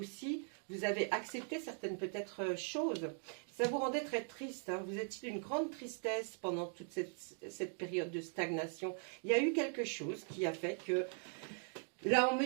vous avez accepté certaines peut-être choses. Ça vous rendait très triste, vous étiez d'une grande tristesse pendant toute cette période de stagnation. Il y a eu quelque chose qui a fait que, là on ne me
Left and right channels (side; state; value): left; silent; 51 dB below the other